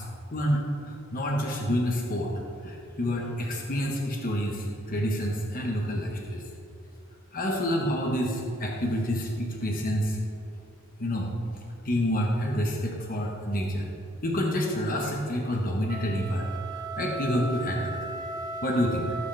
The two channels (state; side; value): normal; both; correlation 0.68